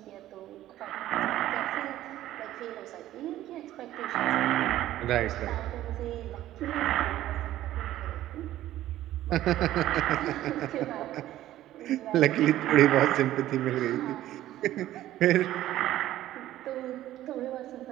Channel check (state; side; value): quieter; left; 13.9 dB